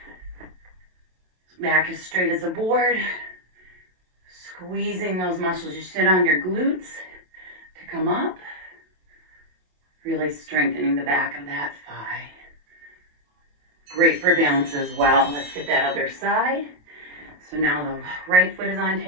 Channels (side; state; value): left; late; 27 ms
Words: Back as straight as a board. Squeezing those muscles you sit on, your glutes, to come up. Really strengthening the back of that thigh. Great for balance as well. Let's get that other side. So now the right foot is on